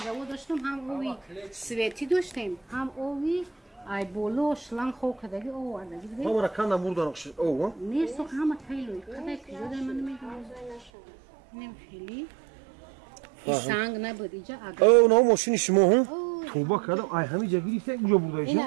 داشتم هم اوی سویتی داشتیم هم اوی ای بولو شلنگ خو کدگی او وردگی دیگه همه را کندم بردن او ها؟ نه سو همه تایلوی کدای کجا دای من نمیدونم نم خیلی سنگ نبود اینجا اگر او نه ماشین شما هم؟ توبه کردم ای همه جا گریسته اینجا بوده اینجا؟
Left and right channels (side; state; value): left; drops out; at 10.9 s